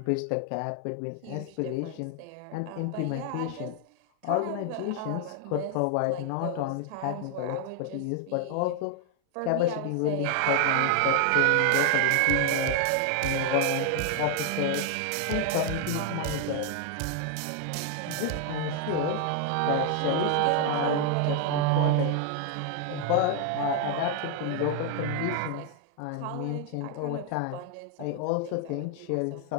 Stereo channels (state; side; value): different; both; correlation 0.00